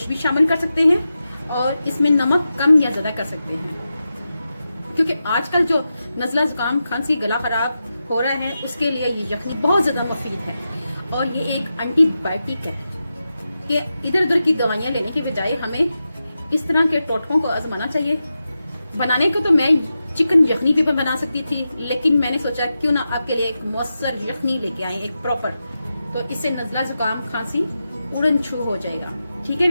भी शामिल कर सकते हैं और इसमें नमक कम या ज्यादा कर सकते हैं, क्योंकि आजकल जो नज़ला, जुकाम, खांसी, गला खराब हो रहा है उसके लिए ये यखनी बहुत ज्यादा मुफीद है। और ये एक एंटीबायोटिक है कि इधर उधर की दवाइयां लेने के बजाय हमें इस तरह के टोटकों को आजमाना चाहिए। बनाने को तो मैं चिकन यखनी भी बना सकती थी, लेकिन मैंने सोचा क्यों ना आपके लिए एक मौसर यखनी लेके आए, एक प्रॉपर। तो इससे नज़ला, जुकाम, खांसी उड़न छू हो जाएगा। ठीक है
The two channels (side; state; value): both; inverted; correlation -0.90